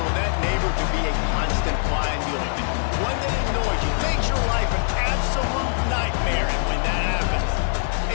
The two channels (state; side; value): silent; right; digital silence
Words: that neighbor can be a constant fly in the ointment. One that annoys you, makes your life an absolute nightmare, and when that happens,